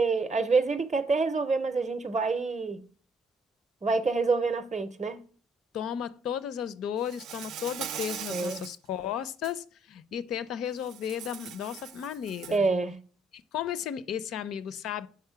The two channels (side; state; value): both; normal; correlation 0.67